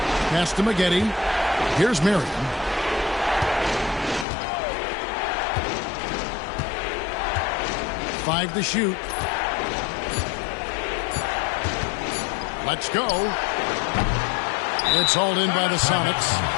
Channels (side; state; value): right; drops out; at 4.2 s